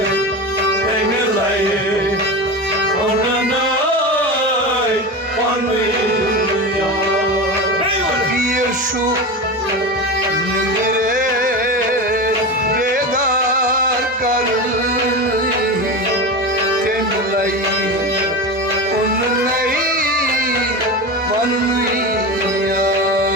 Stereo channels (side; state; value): both; normal; correlation 0.24